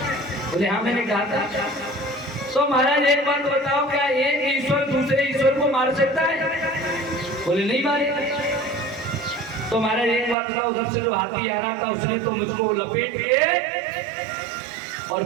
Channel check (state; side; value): drops out; left; at 10.4 s